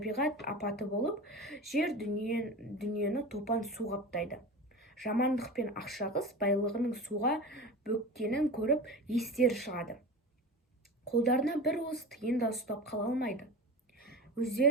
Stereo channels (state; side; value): normal; both; correlation 0.30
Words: апаты болып, жер дүниені топан су қаптайды. Жамандық пен ақшағыз байлығының суға бөккенін көріп естері шығады. Қолдарына бір уыс тиын да ұстап қала алмайды.